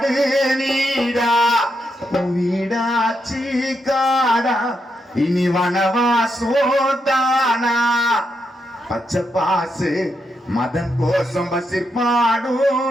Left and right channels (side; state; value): both; normal; correlation 0.83